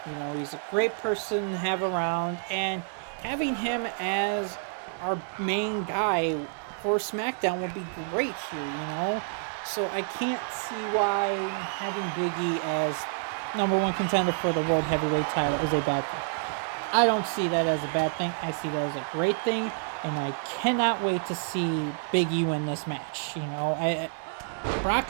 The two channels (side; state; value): left; silent; 59 dB below the other